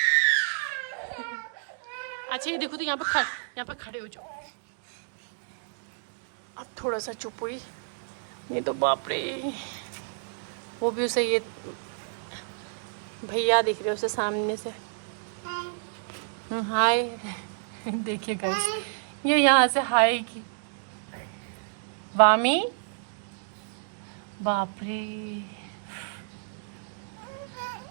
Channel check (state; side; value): silent; left; digital silence